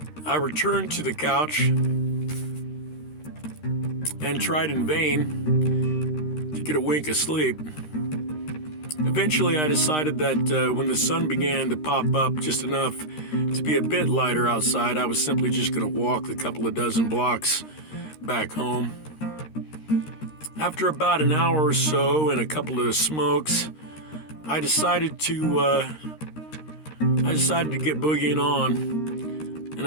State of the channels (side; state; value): right; late; 13 ms